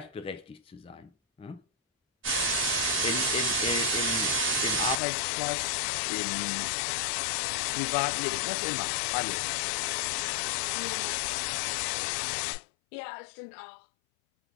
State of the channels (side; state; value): right; drops out; at 5.0 s